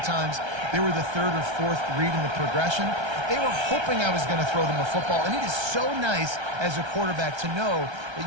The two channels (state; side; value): late; left; 1.3 ms